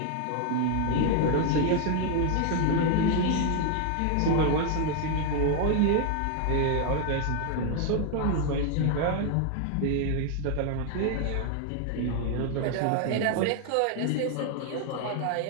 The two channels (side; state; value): both; different; correlation 0.00